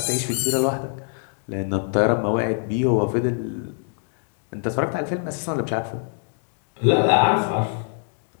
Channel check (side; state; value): right; silent; 56 dB below the other